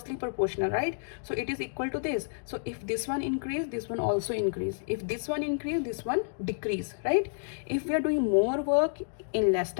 proportional, right? So it is equal to this. So if this one increase, this one also increase. If this one increase, this one decrease, right? If we are doing more work in less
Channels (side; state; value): right; silent; digital silence